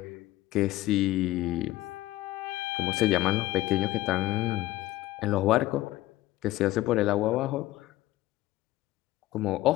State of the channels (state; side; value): quieter; right; 16.6 dB